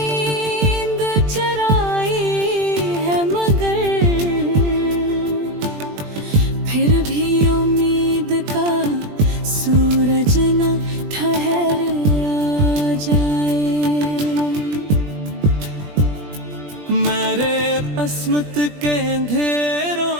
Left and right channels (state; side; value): late; left; 20 ms